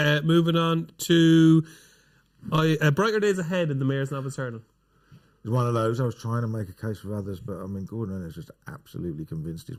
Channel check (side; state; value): both; identical; correlation 1.00